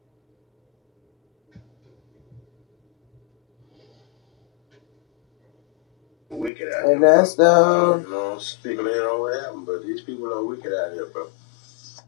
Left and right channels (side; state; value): right; drops out; at 6.5 s